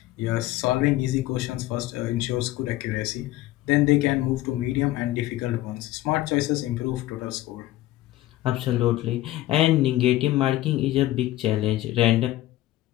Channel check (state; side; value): quieter; right; 15.8 dB